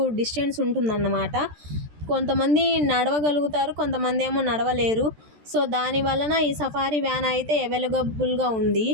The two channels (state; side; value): late; left; 13 ms